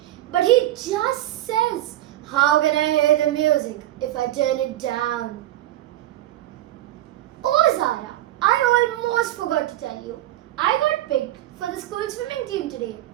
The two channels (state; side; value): quieter; left; 14.2 dB